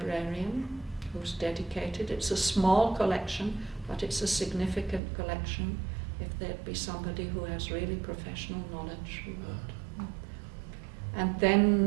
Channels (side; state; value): left; drops out; at 5.0 s